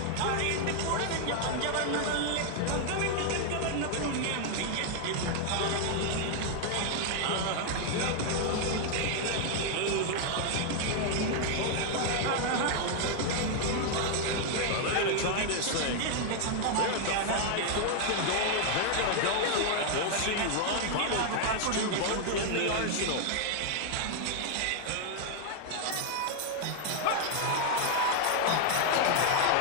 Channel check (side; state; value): both; different; correlation 0.00